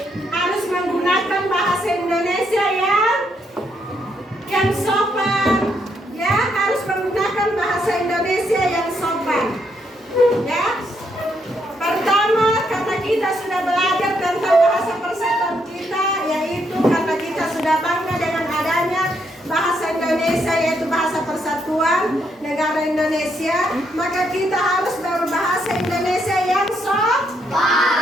harus menggunakan bahasa Indonesia yang sopan, ya, harus menggunakan bahasa Indonesia yang sopan. Persatuan Negara Indonesia, maka kita harus berbahasa Indonesia yang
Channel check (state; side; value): normal; both; correlation 0.75